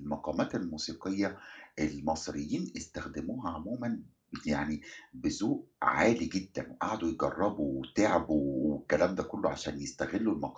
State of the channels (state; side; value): identical; both; correlation 1.00